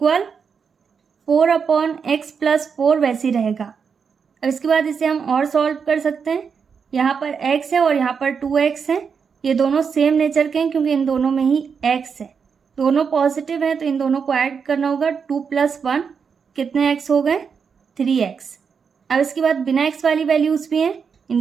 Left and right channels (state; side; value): quieter; left; 6.2 dB